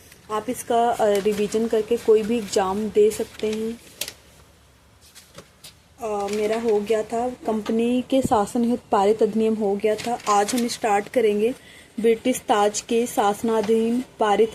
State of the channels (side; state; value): both; identical; correlation 1.00